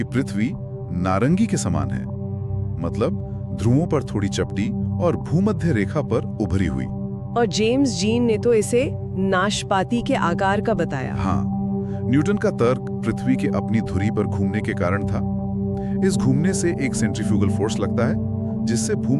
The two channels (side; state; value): both; identical; correlation 1.00